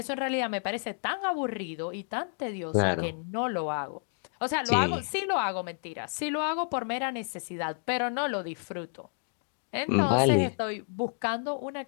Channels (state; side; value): silent; right; 58 dB below the other